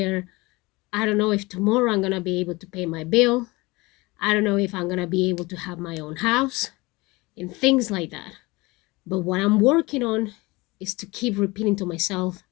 I don't know if tomorrow I'm going to be able to pay my bill. I don't know if I'm going to be able to have my own house and things like that. But what I'm working on is to keep repeating to myself,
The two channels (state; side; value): quieter; right; 23.0 dB